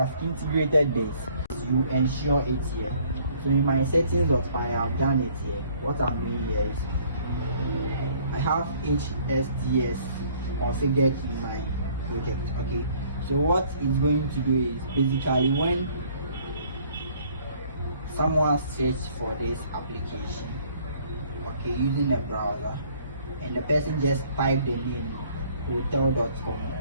integrated this, you ensure it here. So in my settings.py, I have done it here. What I'm doing here is I have HSTS configured in my project. Okay, so what it's going to do is basically when someone searches for this application, okay, using a browser, and the person just type the name hotel.com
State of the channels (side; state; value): both; inverted; correlation -0.59